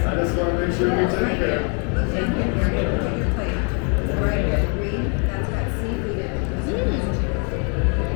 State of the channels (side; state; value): right; quieter; 38.9 dB